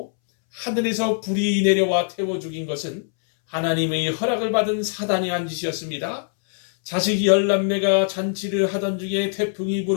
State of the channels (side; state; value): right; silent; 64 dB below the other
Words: 하늘에서 불이 내려와 태워 죽인 것은 하나님의 허락을 받은 사단이 한 짓이었습니다. 자식 10남매가 잔치를 하던 중에 태풍이